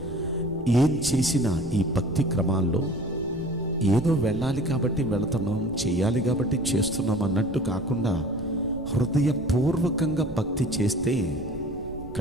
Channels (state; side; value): noise; right; rumble, 17 dB below the sound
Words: ఏం చేసినా ఈ భక్తి క్రమాల్లో ఏదో వెళ్ళాలి కాబట్టి వెళుతున్నాం, చేయాలి కాబట్టి చేస్తున్నాం అన్నట్టు కాకుండా హృదయపూర్వకంగా భక్తి చేస్తే